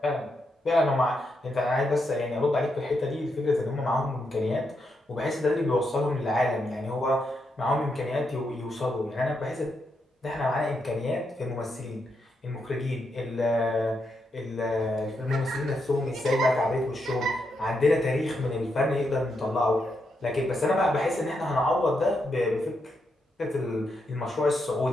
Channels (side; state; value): both; normal; correlation 0.82